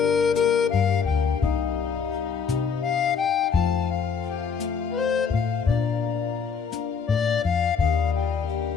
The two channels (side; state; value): right; quieter; 6.1 dB